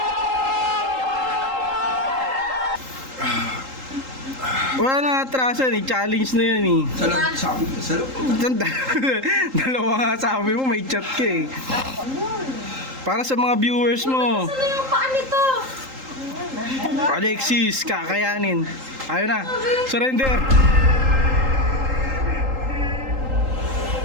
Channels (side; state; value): left; late; 3.8 ms